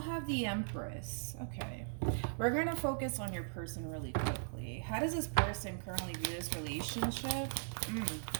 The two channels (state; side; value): silent; left; digital silence